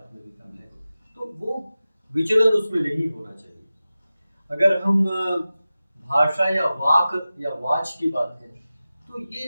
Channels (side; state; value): both; inverted; correlation -0.95